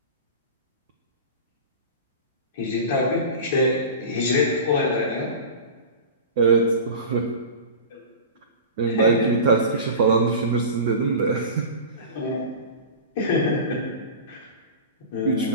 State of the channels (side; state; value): both; inverted; correlation -0.32